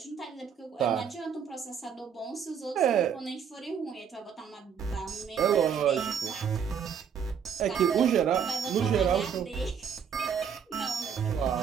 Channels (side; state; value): left; quieter; 7.4 dB